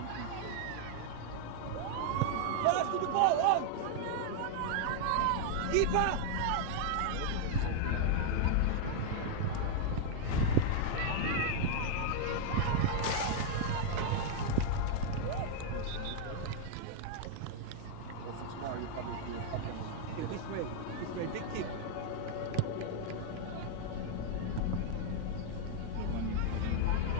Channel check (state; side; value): different; both; correlation 0.00